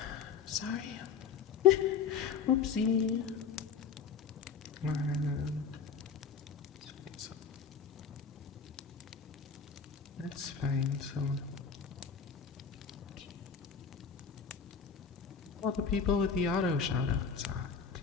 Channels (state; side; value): quieter; right; 6.2 dB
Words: Sorry. Whoopsie. That's fine. So all the people with the auto shoutouts.